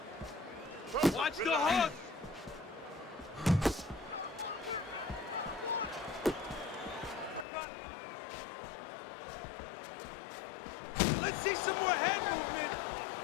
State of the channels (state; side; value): drops out; right; at 7.5 s